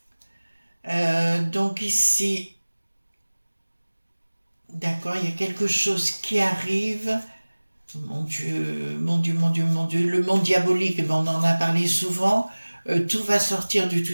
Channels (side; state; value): both; inverted; correlation -1.00